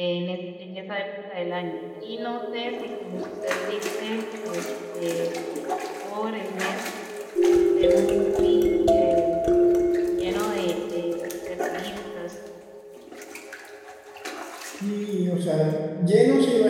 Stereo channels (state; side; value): identical; both; correlation 1.00